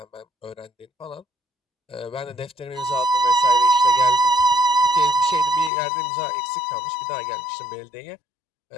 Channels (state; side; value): drops out; right; at 5.7 s